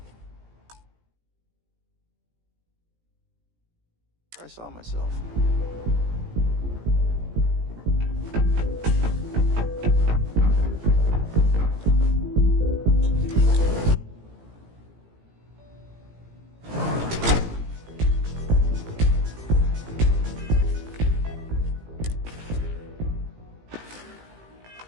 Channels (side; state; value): left; late; 18 ms